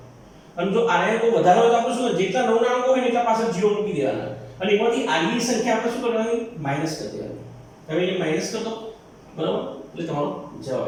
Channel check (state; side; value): identical; both; correlation 1.00